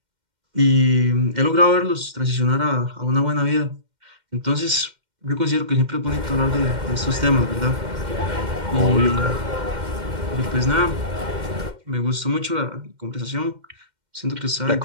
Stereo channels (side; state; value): left; late; 2.1 ms